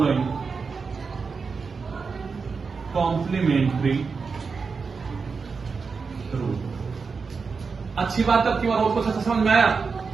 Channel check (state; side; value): quieter; left; 5.0 dB